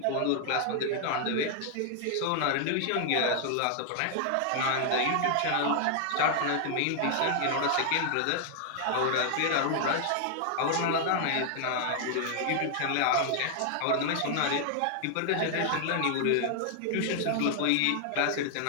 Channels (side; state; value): both; different; correlation 0.00